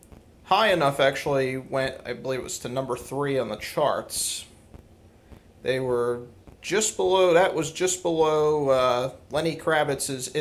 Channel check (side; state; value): both; identical; correlation 1.00